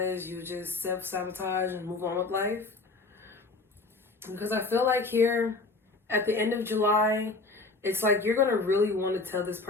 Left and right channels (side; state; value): right; quieter; 3.5 dB